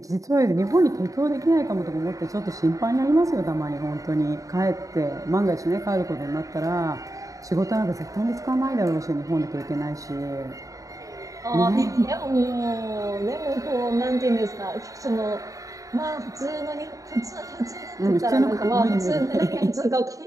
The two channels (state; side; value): late; left; 0.16 ms